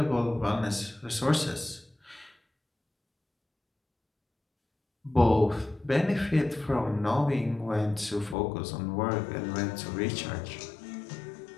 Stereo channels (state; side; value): drops out; right; at 8.3 s